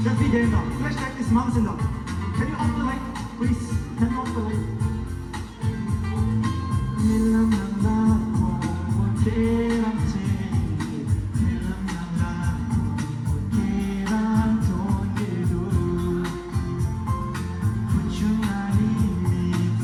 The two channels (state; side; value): identical; both; correlation 1.00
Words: Just be there now. Flashlight is mountain now. Can you off the light, please? Can you off the light?